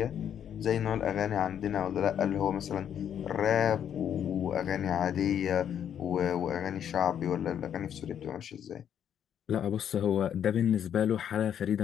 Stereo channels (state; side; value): quieter; right; 9.2 dB